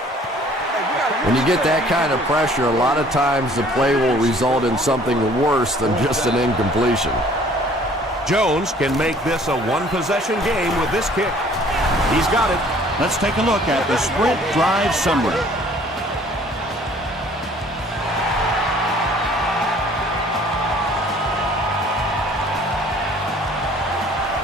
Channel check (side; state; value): both; normal; correlation 0.55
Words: When you get that kind of pressure, a lot of times the play will result in something worse than just an incompletion. Jones can make this a one-possession game with this kick. He's got it. Let's take a look at the sprint drive summary.